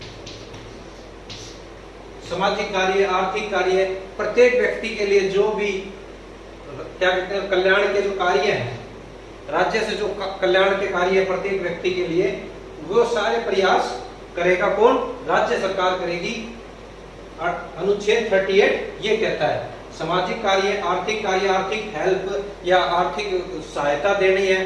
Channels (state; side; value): identical; both; correlation 1.00